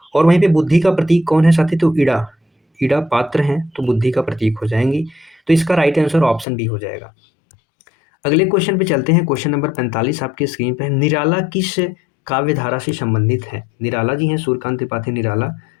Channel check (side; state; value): right; drops out; at 6.5 s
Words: और वहीं पे बुद्धि का प्रतीक कौन है साथी? तो इड़ा पात्र हैं, तो बुद्धि का प्रतीक हो जाएंगी। तो इसका राइट आंसर ऑप्शन बी हो जाएगा। अगले क्वेश्चन पे चलते हैं। क्वेश्चन नंबर 45 आपके स्क्रीन पे है। निराला किस काव्य धारा से संबंधित है? निराला जी हैं सूर्यकांत त्रिपाठी निराला।